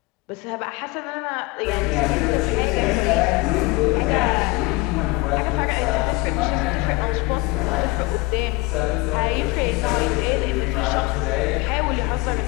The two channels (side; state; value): right; quieter; 21.8 dB